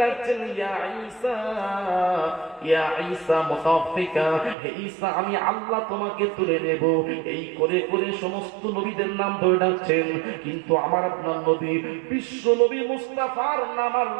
ডাকছেন, ইয়া ঈসা, ইয়া ঈসা মুতাওফিকা, হে ঈসা আমি আল্লাহ তোমাকে তুলে নেব। এই করে করে সমস্ত নবীদের নাম ধরে ডাকছেন। কিন্তু আমার আপনার নবী, বিশ্ব নবী মুস্তাফার নাম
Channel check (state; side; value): drops out; left; at 4.5 s